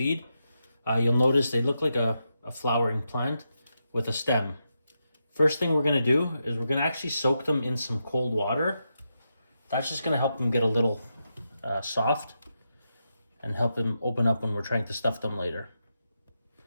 You'll notice they look like a flowering plant with a stem. First thing we're going to do is we're going to actually soak them in some cold water. That's just going to help them get a little soft and help them open up when we're trying to stuff them later.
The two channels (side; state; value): both; inverted; correlation -0.85